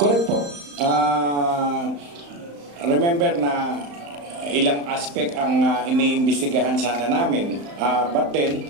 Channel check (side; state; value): left; late; 35 ms